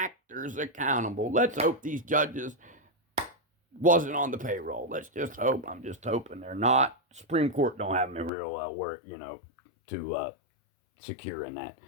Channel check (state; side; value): drops out; right; at 8.3 s